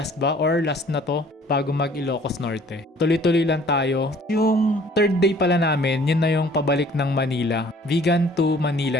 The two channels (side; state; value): both; normal; correlation 0.54